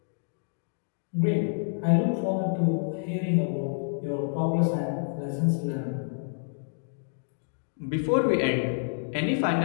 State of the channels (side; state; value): right; silent; digital silence